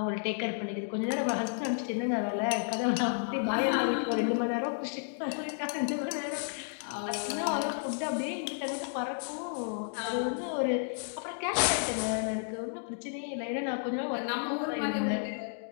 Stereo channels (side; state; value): right; silent; digital silence